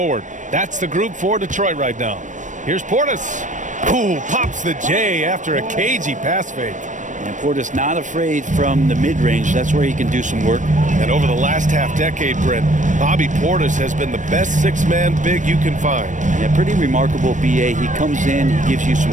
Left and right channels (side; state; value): left; late; 0.37 ms